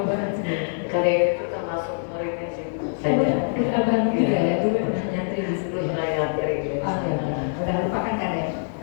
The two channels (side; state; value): right; silent; 61 dB below the other